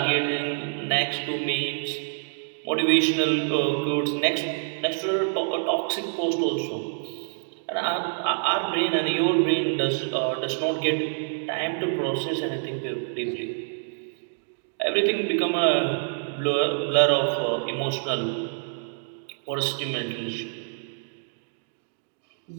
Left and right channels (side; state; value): left; silent; digital silence